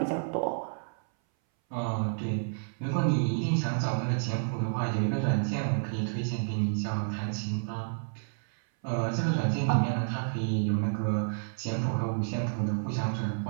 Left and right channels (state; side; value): silent; left; 58 dB below the other